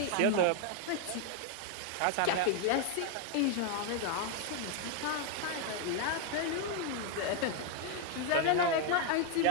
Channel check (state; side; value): different; both; correlation 0.01